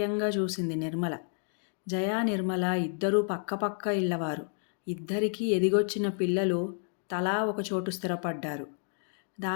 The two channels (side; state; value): right; silent; 58 dB below the other